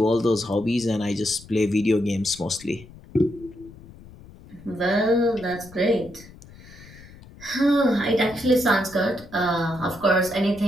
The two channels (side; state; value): left; noise; rumble, 20 dB below the sound